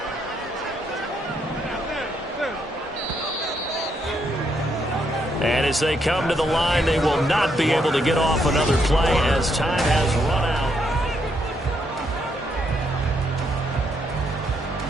And as they come to the line, they will not be able to get off another play as time has run out.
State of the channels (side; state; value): both; normal; correlation 0.76